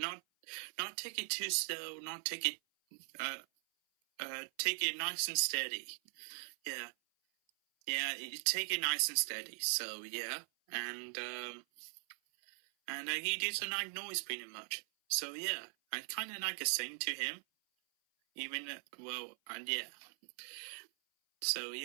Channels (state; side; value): silent; left; 51 dB below the other